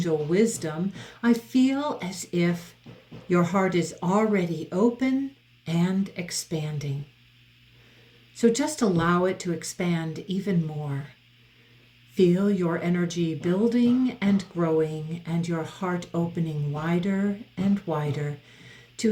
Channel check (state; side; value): identical; both; correlation 1.00